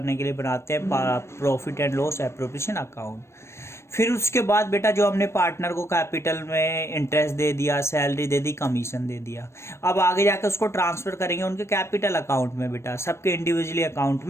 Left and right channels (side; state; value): right; late; 0.13 ms